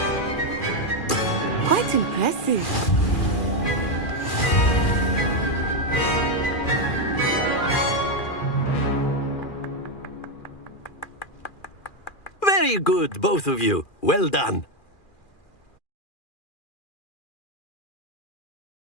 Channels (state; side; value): late; right; 2.4 ms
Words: Quite impressive. Very good, both of you. Well done.